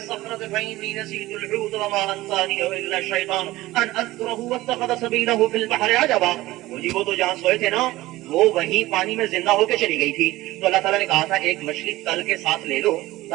فإنی نسیت الحوت وما انسانیہ الا الشیطان ان اذکرہ واتخذ سبیلہ فی البحر عجبا. جی وہ تو جہاں سوئے تھے نا وہ وہیں پانی میں زندہ ہو کے چلی گئی تھی. تو اللہ تعالیٰ نے کہا تھا ایک مچھلی تل کے ساتھ لے لو,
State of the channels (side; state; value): left; quieter; 17.8 dB